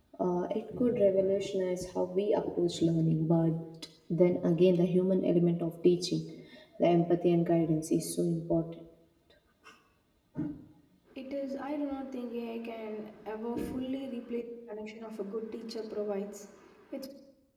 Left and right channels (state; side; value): identical; both; correlation 1.00